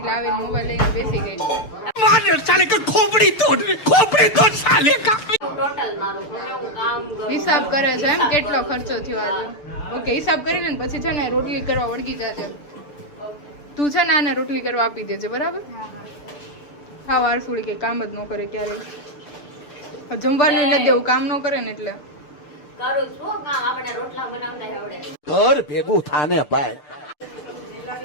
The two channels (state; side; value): late; right; 6.7 ms